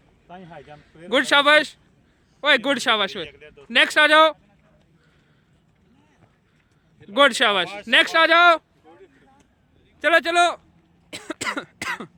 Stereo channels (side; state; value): both; identical; correlation 1.00